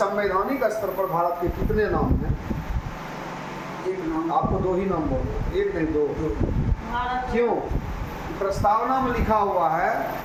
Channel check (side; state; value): both; identical; correlation 1.00